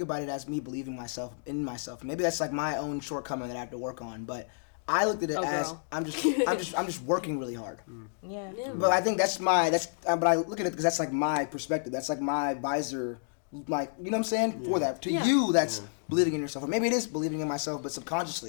about it as me believing in myself. Maybe that's like my own shortcoming that I have to work on, but I looked at it as I'm just working really hard. Yeah. But I think but I look at it because that's like my perspective. That's like my visor, like, you know what I'm saying? For that, to you, that's believing in yourself, or maybe it is believing in myself, but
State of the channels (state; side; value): silent; right; digital silence